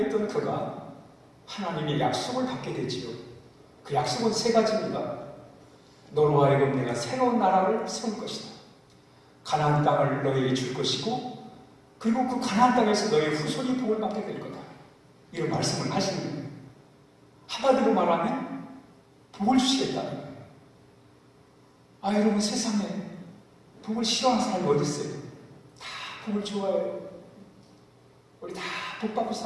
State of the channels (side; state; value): both; identical; correlation 1.00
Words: 그가 하나님의 약속을 받게 되지요. 그 약속은 세 가지입니다. 너로 하여금 내가 새로운 나라를 세울 것이다. 가나안 땅을 너에게 줄 것이고, 그리고 그 가나안 땅에서 너의 후손이 복을 받게 될 거다. 이런 말씀을 하시는 거예요. 한마디로 말하면 복을 주시겠다는 거예요. 여러분, 세상에 복을 싫어하는 사람이 어디 있어요? 다 복을 좋아해요. 우리 다 복 받고